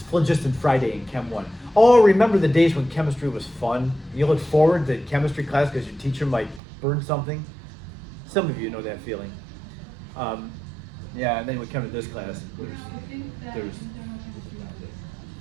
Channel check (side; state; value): left; drops out; at 6.6 s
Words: phlogiston Friday in Chem 1. Oh, remember the days when chemistry was fun? You look forward to chemistry class because your teacher might burn something? Some of you know that feeling. Yeah, and then we come to this class, there's